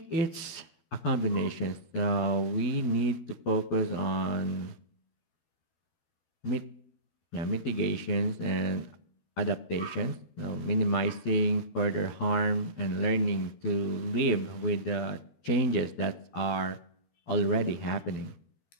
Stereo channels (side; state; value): right; late; 12 ms